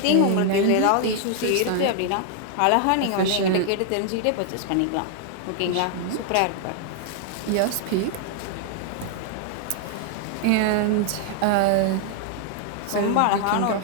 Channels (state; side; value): different; both; correlation 0.00